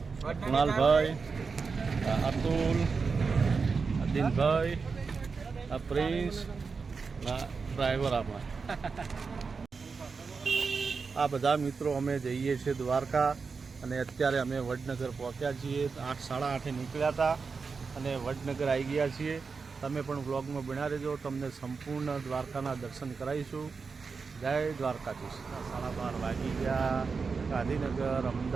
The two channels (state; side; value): quieter; left; 4.9 dB